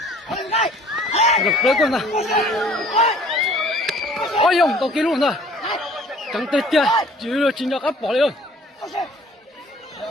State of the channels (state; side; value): normal; both; correlation 0.53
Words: được đấy con này ôi ông tao kia luôn rồi chẳng tết kia chỉ là chính áp bỏ đi ơi